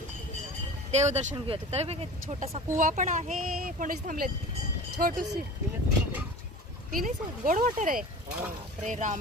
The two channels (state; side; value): normal; both; correlation 0.37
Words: देवदर्शन घेऊया. तर बघा छोटासा कुवा पण आहे. कोणीच थांबलेत. छोटूशी पिणे गोड वॉटर आहे. अरे